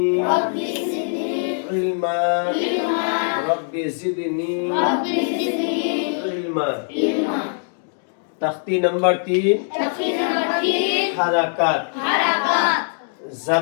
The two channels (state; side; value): silent; right; 65 dB below the other